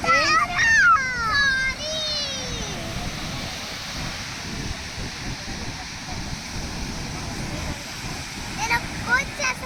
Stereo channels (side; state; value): both; identical; correlation 1.00